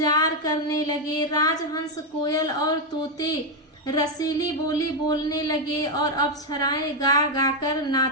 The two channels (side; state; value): both; normal; correlation 0.04